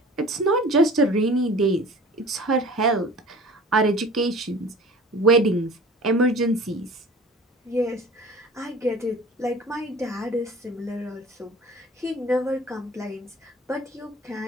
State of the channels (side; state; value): both; normal; correlation 0.43